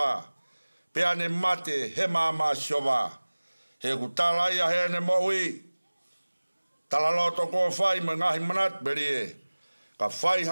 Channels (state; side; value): inverted; both; correlation -1.00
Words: Pea ne mate he mama asi hoa. He kutala ia he ne moui. Tala loto ko whai me ngahi manat berie. Ka whai